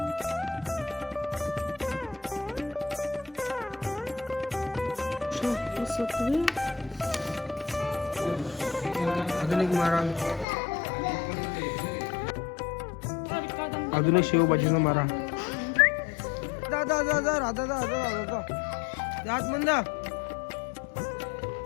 अजून एक मारा, अजून एक शेवभाजीचा मारा. दादा दादा राधा दादा दादा जात म्हणा.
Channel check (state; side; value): drops out; right; at 10.5 s